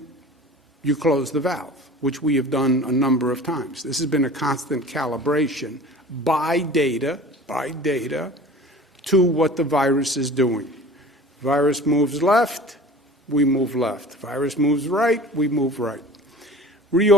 you close the valve, which we have done a number of times. This has been a constant calibration by data, to what the virus is doing. Virus moves left, we move left. Virus moves right, we move right.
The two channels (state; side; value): normal; both; correlation 0.41